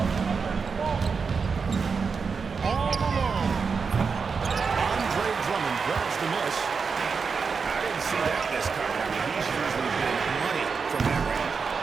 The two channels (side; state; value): left; quieter; 5.3 dB